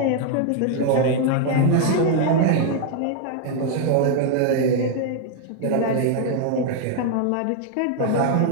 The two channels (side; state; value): both; different; correlation 0.00